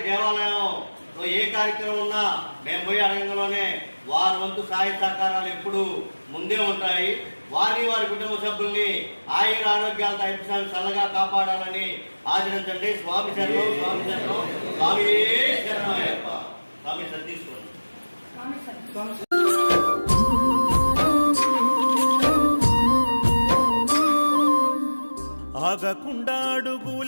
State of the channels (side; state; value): both; inverted; correlation -1.00